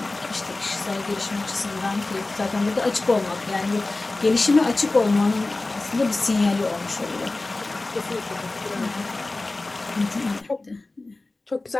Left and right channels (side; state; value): right; quieter; 3.1 dB